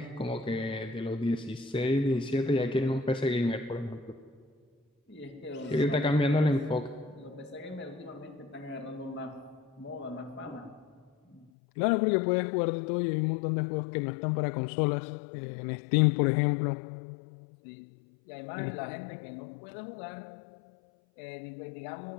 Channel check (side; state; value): right; drops out; at 11.5 s